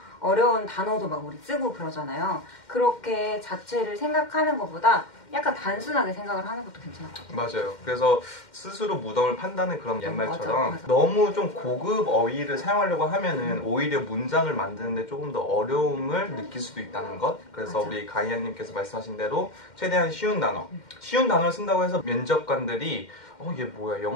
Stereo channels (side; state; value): right; late; 2.1 ms